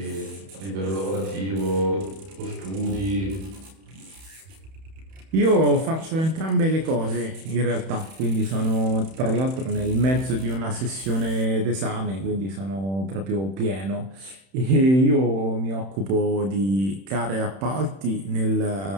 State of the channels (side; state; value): left; late; 31 ms